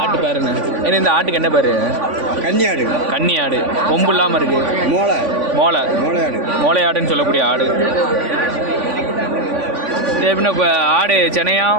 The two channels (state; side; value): late; left; 3.5 ms